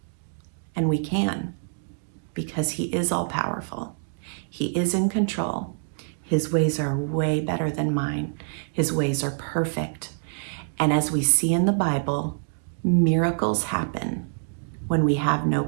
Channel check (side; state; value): left; silent; digital silence